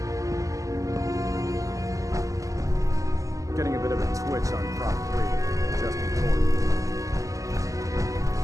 Getting a bit of a twitch on Prop 3, just before.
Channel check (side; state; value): left; late; 0.16 ms